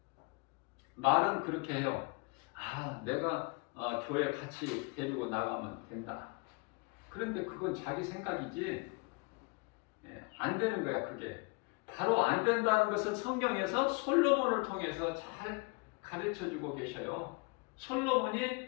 말은 그렇게 해요. 아, 내가 교회 같이 데리고 나가면 된다. 그런데 그건 자기 생각이지 안 되는 거야. 그게 바로 안 된다는 것을 성경에서 솔로몬을 통해서 잘 가르쳐주고 계셔요.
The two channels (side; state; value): right; quieter; 28.9 dB